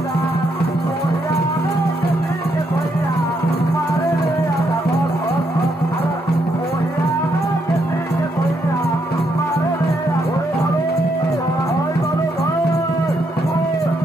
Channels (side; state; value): both; normal; correlation 0.76